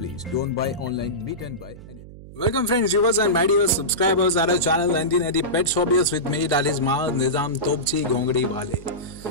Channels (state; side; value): noise; right; hum, 17 dB below the sound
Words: Don't buy online, meet and buy anything. Welcome friends, viewers and my dear subscribers at our channel 1980 Pets Hobbyist with me, that is Maaz Nizam Topchi Gongdi